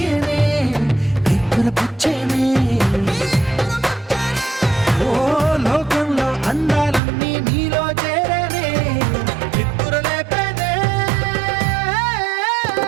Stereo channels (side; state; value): left; drops out; at 7.0 s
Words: పుచ్చేనే ఓ లోకంలో అందాలన్నీ నీలో చేరేనే చిత్తురలేపేనే